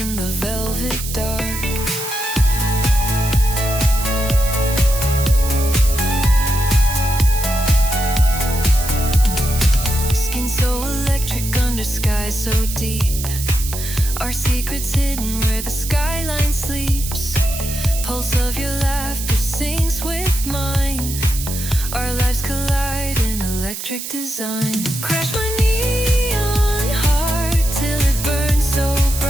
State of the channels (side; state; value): right; noise; hiss, 7 dB below the sound